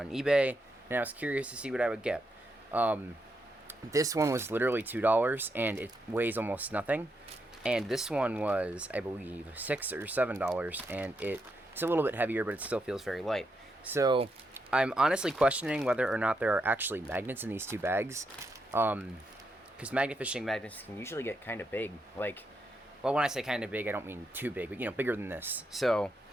eBay, and I was curious to see what I would get. This one was literally $2, and it weighs almost nothing. And this one was, I believe, $6 or $7, and it's a little bit heavier, but it still feels very light. So I'm honestly questioning whether or not there are actually magnets in these two bags. Because magnet fishing magnets can usually get kind of big. Like, well, when I say kind of big, I don't mean too big, but, you know, bigger than this. So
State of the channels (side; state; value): both; normal; correlation 0.82